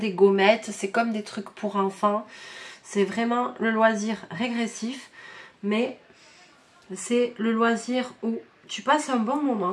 gommettes, c'est comme des trucs pour enfants. C'est vraiment le loisir régressif, mais c'est le loisir où tu passes un bon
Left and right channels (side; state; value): both; identical; correlation 1.00